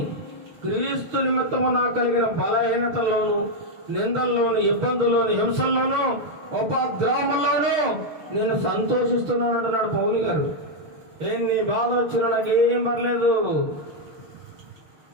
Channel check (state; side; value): late; left; 6.4 ms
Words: క్రీస్తు నిమిత్తము నాకు కలిగిన బలహీనతల్లోను, నిందల్లోను, ఇబ్బందుల్లోను, హింసల్లోను, ఉపద్రవముల్లోను నేను సంతోషిస్తున్నాను అంటున్నాడు పౌలు గారు. ఎన్ని బాధలు వచ్చినా నాకు ఏం